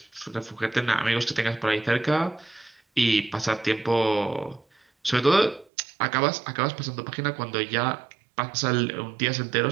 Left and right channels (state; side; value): drops out; left; at 5.7 s